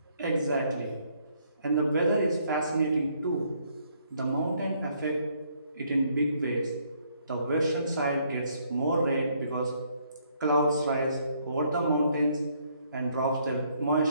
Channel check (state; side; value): inverted; both; correlation -0.69